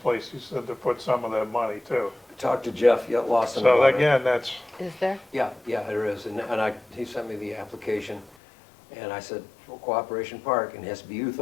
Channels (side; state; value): right; drops out; at 8.3 s